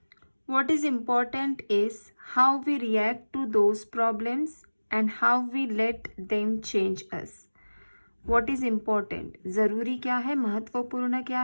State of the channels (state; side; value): inverted; both; correlation -1.00